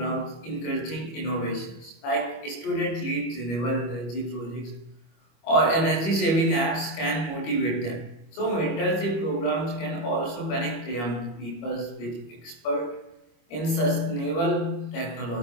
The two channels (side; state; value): right; late; 25 ms